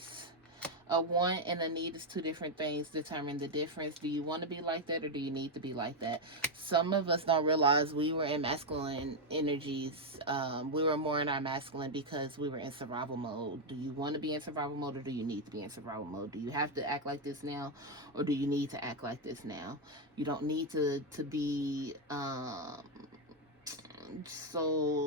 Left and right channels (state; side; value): normal; both; correlation 0.03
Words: A want and a need is two different things. Determine the difference. Do you want to be like that, or do you need to be like that? Some of us don't realize we were in masculine energies. We were more in our masculine because we were in survival mode. Do you want to be in survival mode, or do you need to be in survival mode? Do you have to act like this now, or do you need to act like this now? You don't need to be